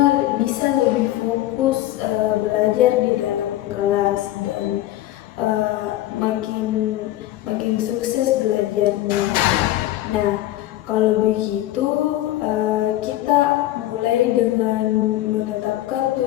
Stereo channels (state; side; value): quieter; right; 14.9 dB